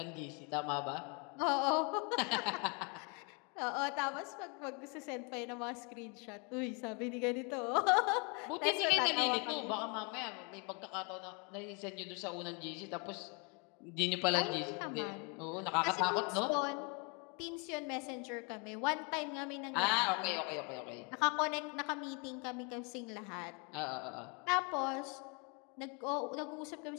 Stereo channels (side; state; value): right; quieter; 33.9 dB